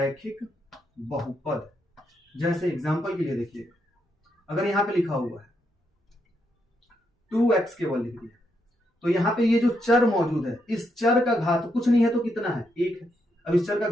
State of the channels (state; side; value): normal; both; correlation 0.80